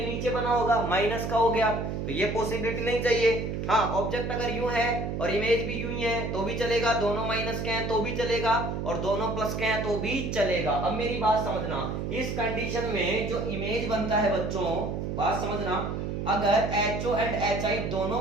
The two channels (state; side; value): noise; right; hum, 3 dB below the sound